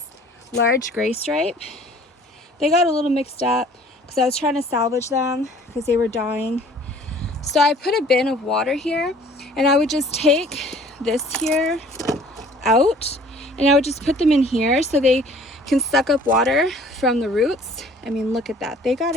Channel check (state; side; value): normal; both; correlation 0.52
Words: large gray stripe. They got a little mixed up because I was trying to salvage them because they were dying. So I put a bin of water here, and I would just take this here out, and I would just put them in here so they can suck up water from the roots. I mean, look at that. They got